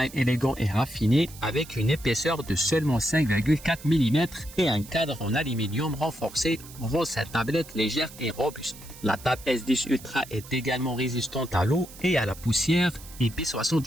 élégant et raffiné, avec une épaisseur de seulement 5,4 mm et un cadre en aluminium renforcé, rend cette tablette légère et robuste. La Tab S10 Ultra est également résistante à l'eau et à la poussière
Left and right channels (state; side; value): noise; right; hiss, 18 dB below the sound